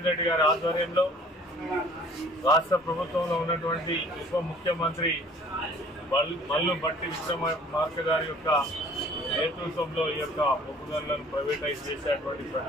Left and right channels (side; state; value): both; normal; correlation 0.52